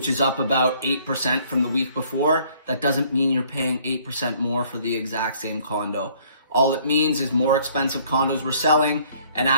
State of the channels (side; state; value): both; inverted; correlation -0.59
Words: is up about 8% from the week before. That doesn't mean you're paying 8% more for the exact same condo. All it means is more expensive condos were selling, and